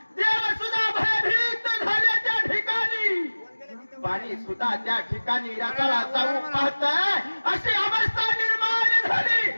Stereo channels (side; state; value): both; inverted; correlation -1.00